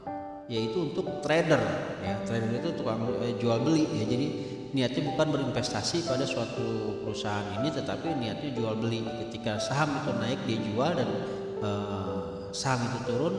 yaitu untuk trader ya. Trader itu tukang jual beli ya, jadi niatnya bukan berinvestasi pada suatu perusahaan ini, tetapi niatnya jual beli. Ketika saham itu naik dia jual, dan saham itu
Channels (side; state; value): both; identical; correlation 1.00